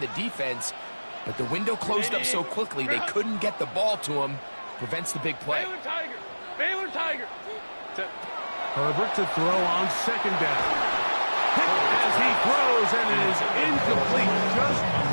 defense, but the window closed up so quickly they couldn't get the ball to him. Prevents the big play. Baylor Tiger. Set. Herbert to throw on 2nd down. As he throws, and it is incomplete. Just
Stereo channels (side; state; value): both; inverted; correlation -1.00